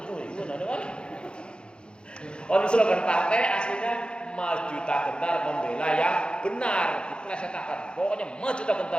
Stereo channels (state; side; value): late; right; 0.052 ms